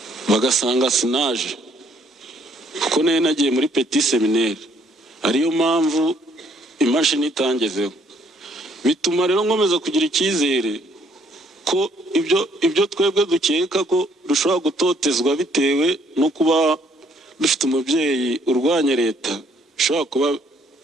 bagasanga sinaje kuko nagiye muri Petit Seminaire, ariyo mpamvu imashini itangezeho. Bituma rero nkomeza kugira icyizere ko ibyo twebwe dukeka ko dushobora gutotezwa bitewe no kuba dufite umubyeyi urwanya leta bishobora kuba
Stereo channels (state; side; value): normal; both; correlation 0.66